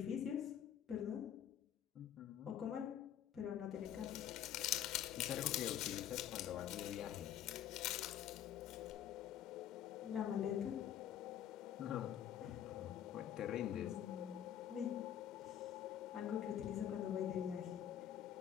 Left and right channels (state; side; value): quieter; right; 10.5 dB